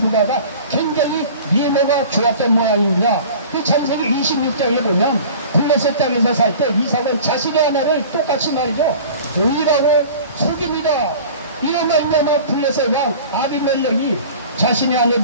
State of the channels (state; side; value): inverted; both; correlation -0.42